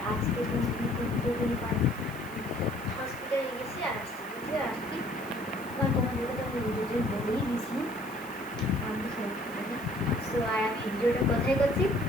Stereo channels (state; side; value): noise; right; hiss, 19 dB below the sound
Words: আজকে দিন দুপুরে হসপিটালে গেছি আর আসছি কারণ তোমাদেরকে তো আমি ভিডিওতে বলেই দিয়েছি আমি হসপিটালে। সো আর আমি ভিডিওটা কোথায় করছি?